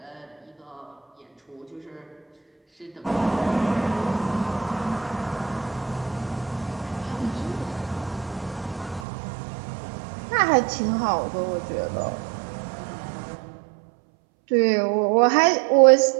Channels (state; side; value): drops out; left; at 9.1 s